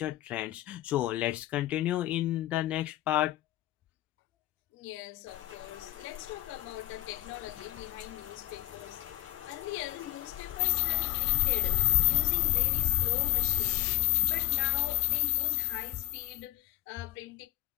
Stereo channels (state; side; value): quieter; right; 18.9 dB